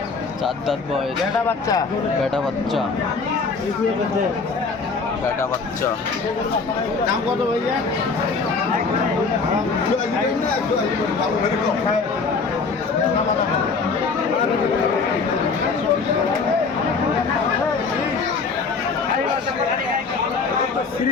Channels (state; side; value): quieter; right; 4.6 dB